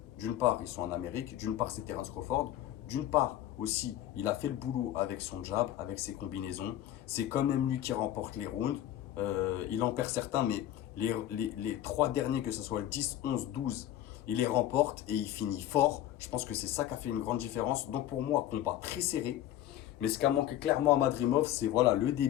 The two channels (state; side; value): quieter; right; 12.5 dB